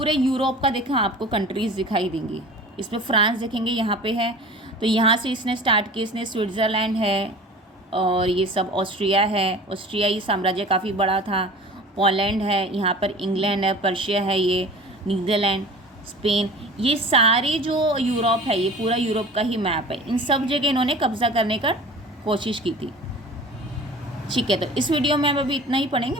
यूरोप का देखा आपको कंट्रीज़ दिखाई देंगी। इसमें फ्रांस देखेंगे यहाँ पे है, तो यहाँ से इसने स्टार्ट किया, इसने स्विट्ज़रलैंड है और ये सब ऑस्ट्रिया है, ऑस्ट्रियाई साम्राज्य काफ़ी बड़ा था। पोलैंड है, यहाँ पर इंग्लैंड है, पर्शिया है, ये नीदरलैंड, स्पेन, ये सारे जो यूरोप है, ये पूरा यूरोप का ही मैप है। इन सब जगह इन्होंने कब्जा करने का कोशिश की थी। ठीक है, तो इस वीडियो में हम अभी इतना ही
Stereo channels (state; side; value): normal; both; correlation 0.40